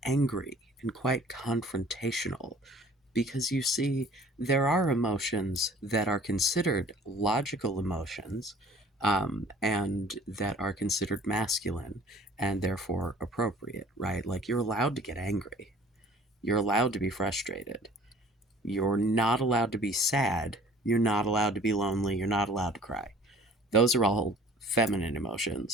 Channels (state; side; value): normal; both; correlation 0.50